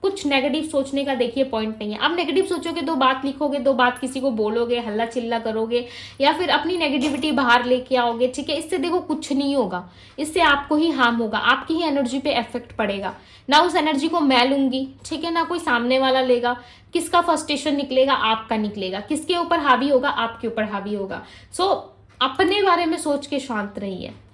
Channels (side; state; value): both; identical; correlation 1.00